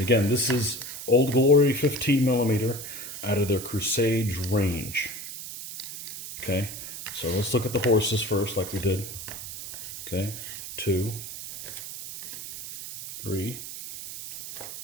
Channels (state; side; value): noise; right; hiss, 9 dB below the sound